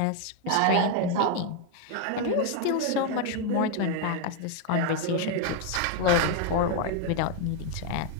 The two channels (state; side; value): different; both; correlation 0.00